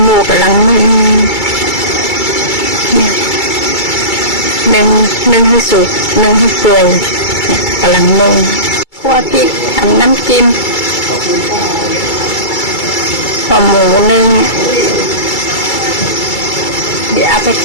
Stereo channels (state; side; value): late; right; 2.3 ms